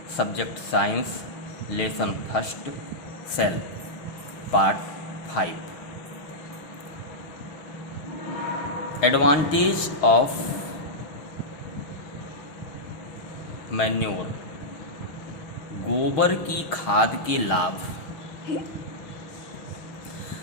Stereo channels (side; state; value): right; late; 6.4 ms